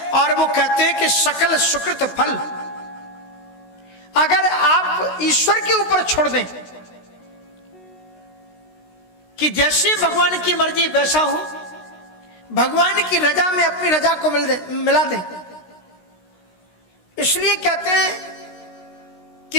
और वो कहते हैं कि सकल सुकृत फल, अगर आप ईश्वर के ऊपर छोड़ दें कि जैसे भगवान की मर्जी वैसा हो, भगवान की रजा में अपनी रजा को मिला दें। इसलिए कहते हैं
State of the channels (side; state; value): right; late; 16 ms